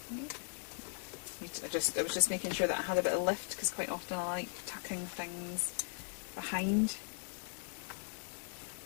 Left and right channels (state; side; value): silent; right; 52 dB below the other